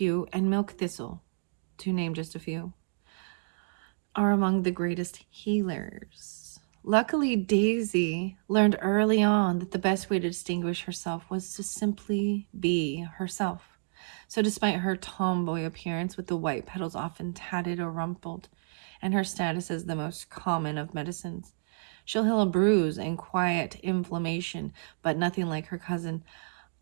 and Milk Thistle, to name just a few, are among the greatest healers. Luckily, Daisy learned early on that the best way to distinguish herself was to simply be herself. So, despite her tomboy appearance with the white petals often tatted or rumpled, and her status as the most common of medicines, she'll heal a bruise and quiet inflammation, but nothing like her cousin,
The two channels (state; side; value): silent; left; digital silence